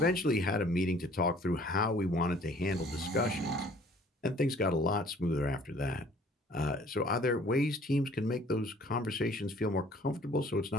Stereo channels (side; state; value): both; normal; correlation 0.55